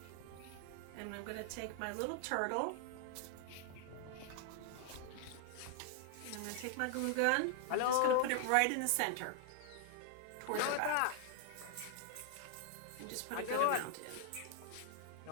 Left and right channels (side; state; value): both; different; correlation 0.00